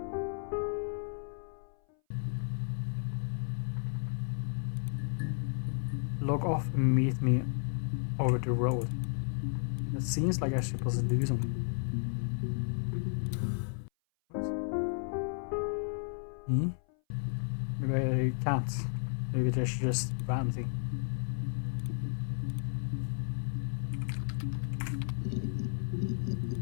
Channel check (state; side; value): silent; right; 56 dB below the other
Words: Log off and meet me over the road. It seems like I'm supposed to do something. Hmm? Maybe I can't. Maybe there's just random thing.